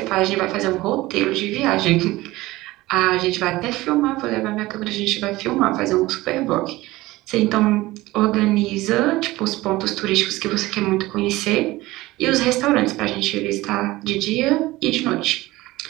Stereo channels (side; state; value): left; quieter; 18.8 dB